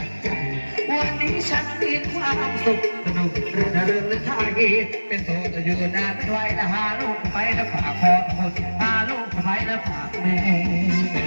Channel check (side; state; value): both; inverted; correlation -1.00